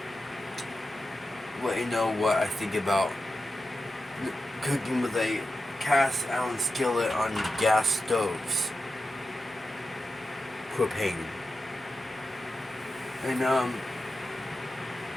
let you know what I think about cooking with a cast iron skillet on gas stoves, propane. And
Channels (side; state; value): both; normal; correlation 0.91